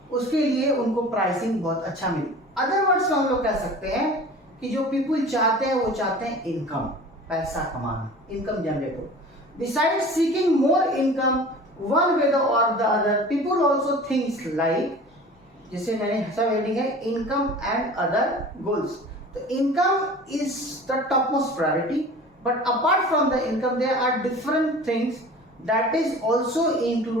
उसके लिए उनको प्राइसिंग बहुत अच्छा मिले। अदर वर्ड्स में हम लोग कह सकते हैं कि जो पीपल चाहते हैं वो चाहते हैं इनकम, पैसा कमाना, इनकम जनरेट हो। Besides seeking more income one way और the other, people also things like, जिसे मैंने सब हेडिंग है इनकम एंड अदर गोल्स। तो income is the top most priority, but apart from the income there are different things that is also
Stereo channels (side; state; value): both; normal; correlation 0.41